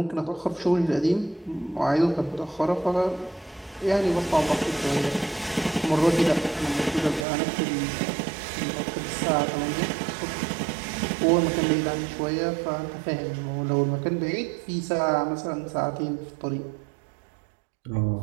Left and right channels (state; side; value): drops out; left; at 7.2 s